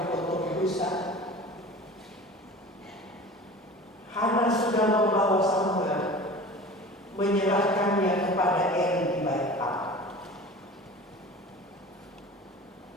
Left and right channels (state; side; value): normal; both; correlation 0.38